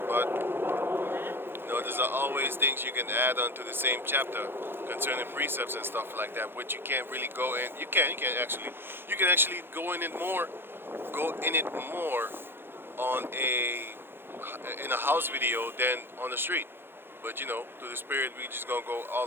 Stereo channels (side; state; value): left; late; 0.10 ms